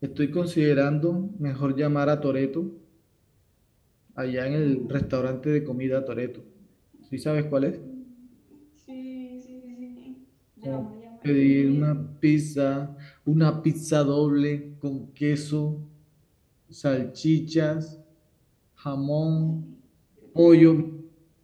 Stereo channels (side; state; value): both; identical; correlation 1.00